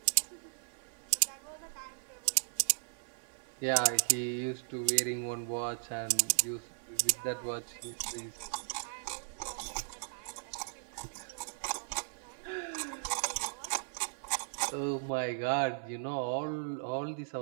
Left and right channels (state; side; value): silent; left; digital silence